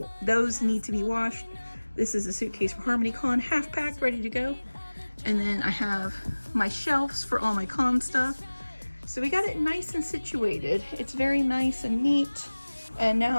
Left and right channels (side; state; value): both; inverted; correlation -1.00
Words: to be washed. This is a suitcase for harmonycon, half packed, ready to go. And then I have my shelves for all my con stuff. So we got it nice and situated. It's very nice and neat. And